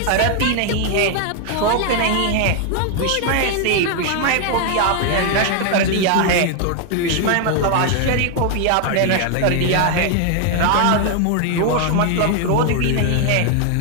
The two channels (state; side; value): different; both; correlation 0.00